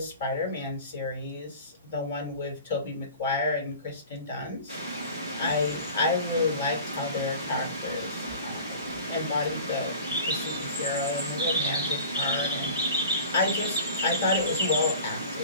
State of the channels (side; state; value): both; inverted; correlation -0.41